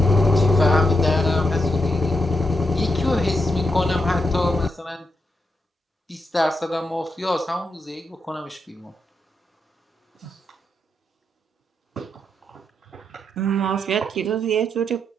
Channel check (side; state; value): both; normal; correlation 0.83